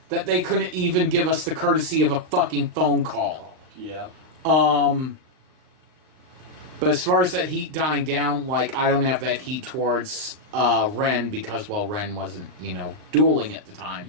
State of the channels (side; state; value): left; late; 39 ms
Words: that they couldn't even give us the courtesy of a fucking phone call. Yeah. But as far as that heat dying down, I don't have that heat towards Ren because, Ren wasn't, dueling at the time.